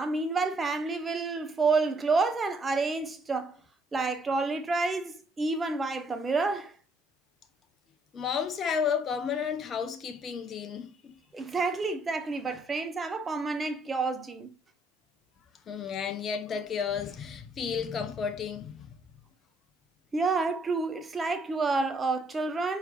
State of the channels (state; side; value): normal; both; correlation 0.68